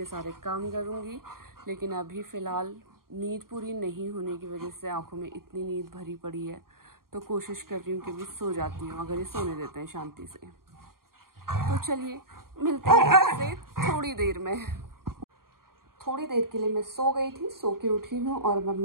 सारे काम करूँगी, लेकिन अभी फ़िलहाल नींद पूरी नहीं होने की वजह से आंखों में इतनी नींद भरी पड़ी है, तो कोशिश कर रही हूँ कि अभी सो जाती हूँ अगर ये सोने देते हैं शांति से। तो चलिए मिलते हैं आपसे थोड़ी देर में। थोड़ी देर के लिए मैं सो गई थी, सो के उठी हूँ और अब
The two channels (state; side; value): late; left; 0.92 ms